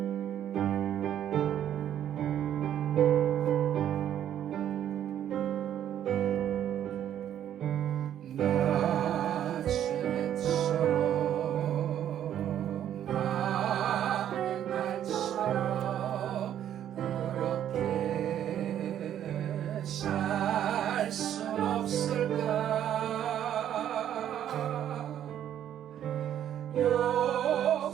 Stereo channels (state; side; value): quieter; left; 10.6 dB